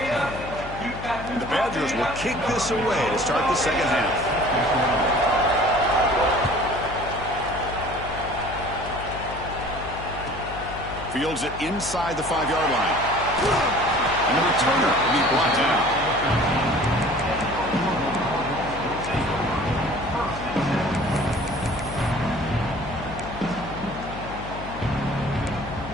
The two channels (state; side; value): noise; left; hum, 11 dB below the sound